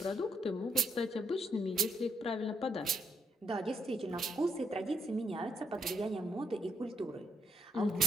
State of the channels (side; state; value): both; normal; correlation 0.75